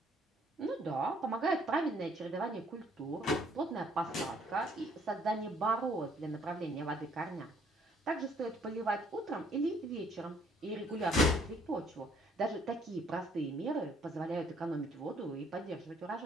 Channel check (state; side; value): normal; both; correlation 0.63